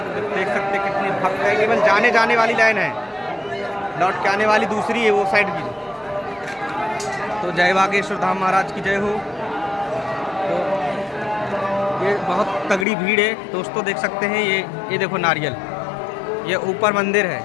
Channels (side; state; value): right; drops out; at 12.9 s